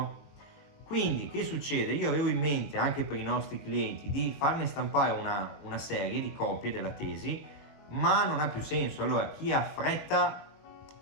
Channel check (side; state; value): right; late; 21 ms